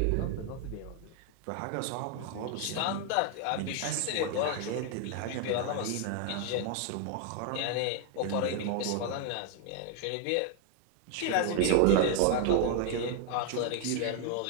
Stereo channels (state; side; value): different; both; correlation 0.00